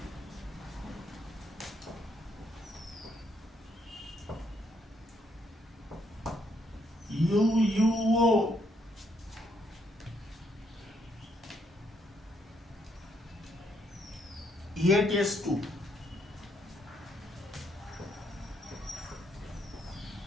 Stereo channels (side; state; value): both; normal; correlation 0.73